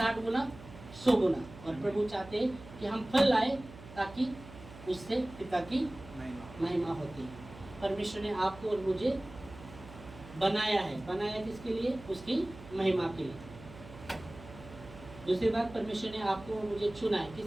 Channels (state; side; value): noise; right; hum, 17 dB below the sound